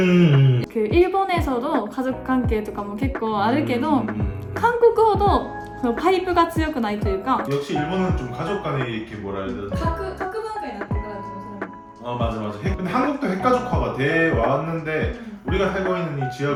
일본에서도 가족 관계 とかも結構あるけど 한국어도 파이프가 強くないというか 역시 일본은 좀 가족 간에 이렇게 뭐라 해야 되나? 각文化になってから좀 맞아. 근데 한국도 핵가족화가 돼 왔는데 우리가 살고 있는 이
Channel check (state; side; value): identical; both; correlation 1.00